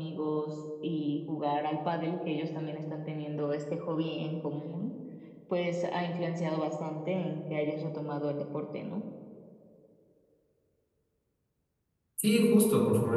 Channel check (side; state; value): both; identical; correlation 1.00